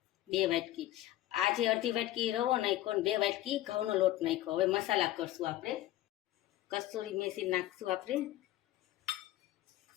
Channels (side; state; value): right; quieter; 14.8 dB